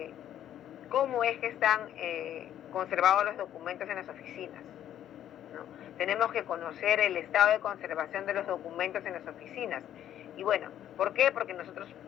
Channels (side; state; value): right; quieter; 11.1 dB